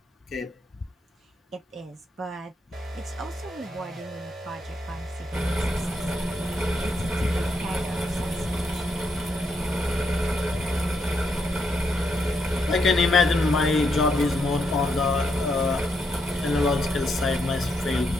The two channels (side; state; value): both; normal; correlation 0.79